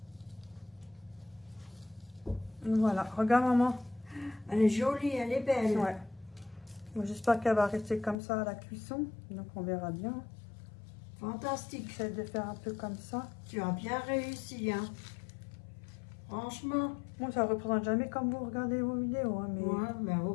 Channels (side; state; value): right; drops out; at 8.2 s